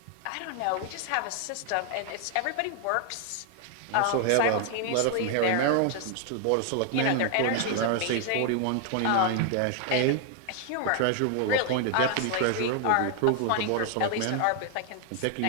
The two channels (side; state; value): both; different; correlation 0.00